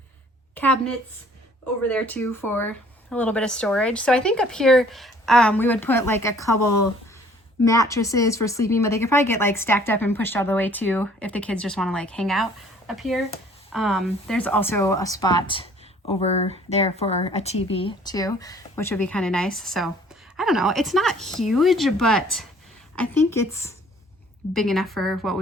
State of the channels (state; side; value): normal; both; correlation 0.56